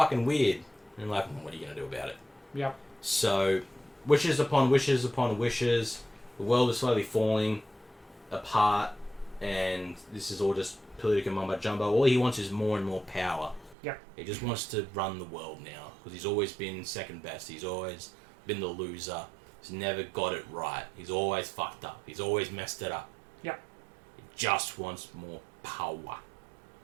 weird. And like, what are you going to do about it? Yep. So, wishes upon wishes upon wishes. The world is slowly falling apart. And this is all just political mumbo jumbo. All he wants is more and more power. Yep. He just wants to run the world now. Because he's always been second best. He's always been the loser. He's never got it right. He's always fucked up. He's always messed it up. Yep. He just wants more power.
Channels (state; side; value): drops out; left; at 13.8 s